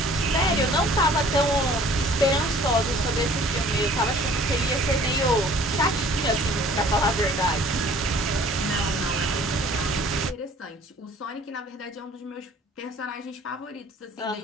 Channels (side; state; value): both; normal; correlation 0.52